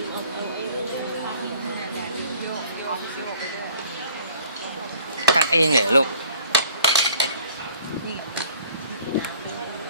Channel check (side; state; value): both; inverted; correlation -0.52